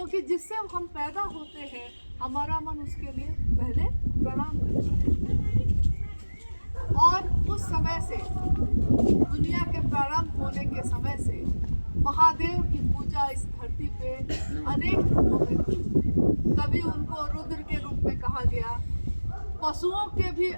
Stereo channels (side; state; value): both; inverted; correlation -1.00